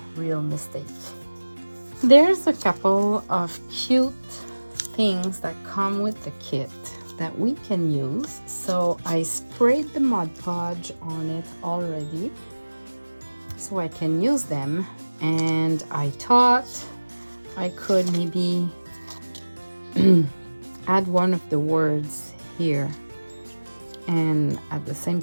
real mistake. There's a couple of cute things that come with the kit that we can use. So I sprayed the Mod Podge on it already so I can use them, and I thought I could maybe add one of the words here, and at the same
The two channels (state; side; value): inverted; both; correlation -1.00